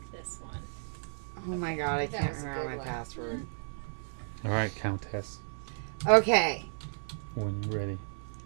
this one. Oh my Okay. god, I That can't was a remember good my one. password. All right, Countess. Okay. When you're ready.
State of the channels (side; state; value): left; silent; 56 dB below the other